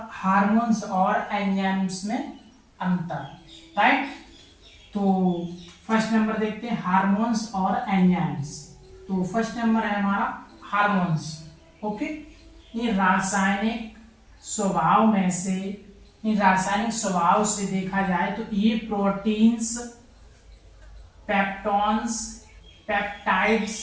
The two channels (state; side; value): identical; both; correlation 1.00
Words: हार्मोन्स और एंजाइम्स में अंतर, राइट। तो फर्स्ट नंबर देखते हैं हार्मोन्स और एंजाइम्स। तो फर्स्ट नंबर है हमारा हार्मोन्स। ओके, ये रासायनिक स्वभाव में से, रासायनिक स्वभाव से देखा जाए तो ये प्रोटीन्स, पेप्टॉन्स, पेप्टाइड्स,